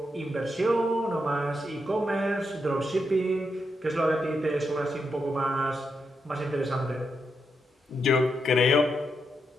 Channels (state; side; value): normal; both; correlation 0.83